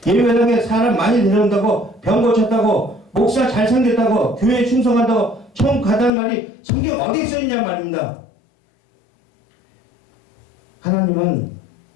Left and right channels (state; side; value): drops out; right; at 6.1 s